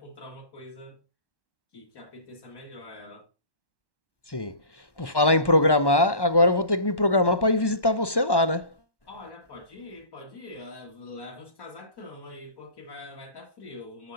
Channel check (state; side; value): late; right; 1.1 ms